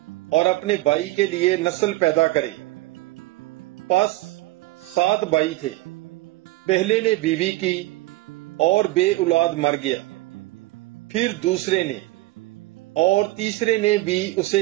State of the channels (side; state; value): left; quieter; 18.8 dB